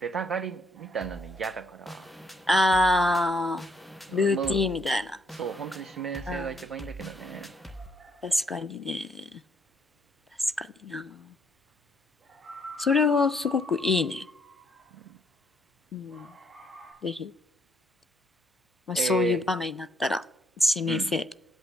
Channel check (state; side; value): normal; both; correlation 0.71